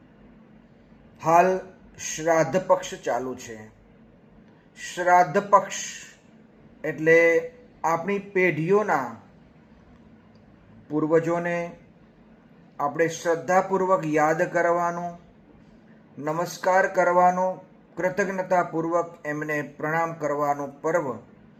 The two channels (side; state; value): both; identical; correlation 1.00